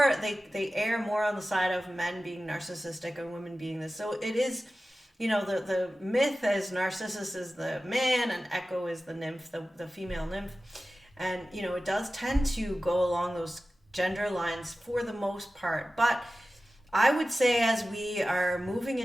they err more on the side of men being narcissistic and women being this. So it is, the myth is Narcissus is the man and Echo is the nymph, the female nymph. And, it does tend to go along those gender lines for the most part. But I would say as we are moving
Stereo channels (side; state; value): both; normal; correlation 0.95